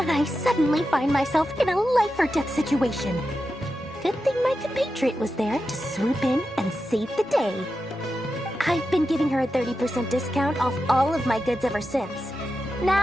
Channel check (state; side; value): normal; both; correlation 0.90